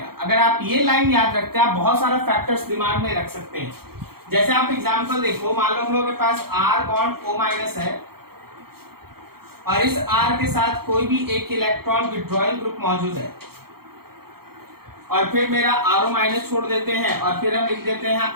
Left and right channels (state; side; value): late; left; 0.95 ms